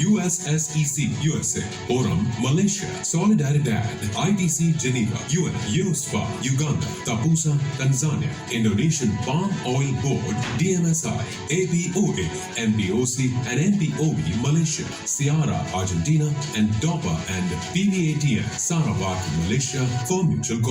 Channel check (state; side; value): identical; both; correlation 1.00